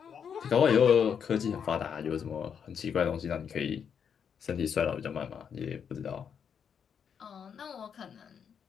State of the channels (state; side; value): quieter; right; 7.4 dB